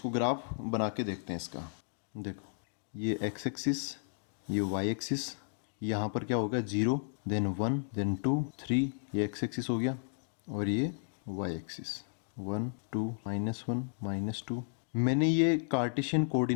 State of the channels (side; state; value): right; silent; digital silence